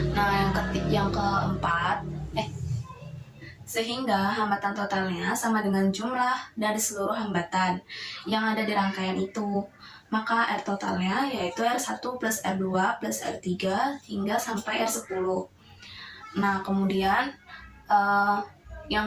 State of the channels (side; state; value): both; identical; correlation 1.00